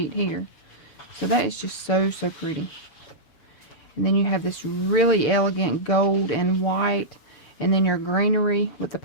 here. So that is just so pretty. And then you have this really elegant gold and white. And then your greenery with the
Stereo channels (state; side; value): late; right; 6.8 ms